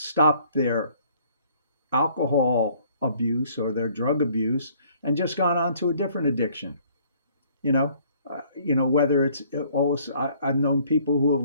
their alcohol abuse or their drug abuse and just gone on to a different addiction. You know, whether it's all I've known people who have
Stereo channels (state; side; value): inverted; both; correlation -0.60